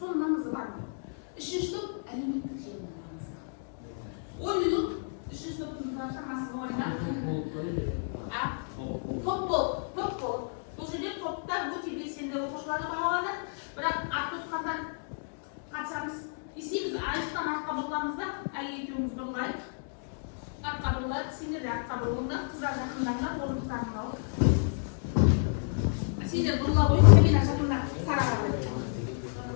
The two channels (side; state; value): right; silent; digital silence